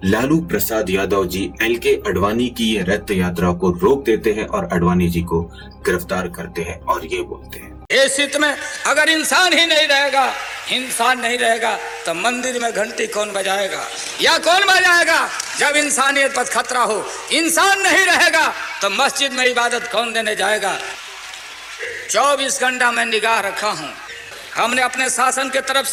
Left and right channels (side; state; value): both; identical; correlation 1.00